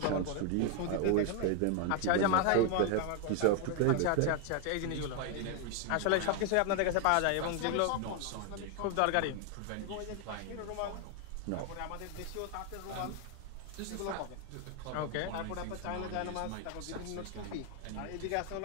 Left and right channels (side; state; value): both; different; correlation 0.00